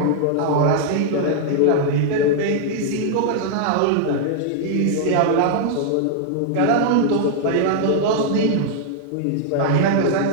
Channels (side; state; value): both; different; correlation -0.01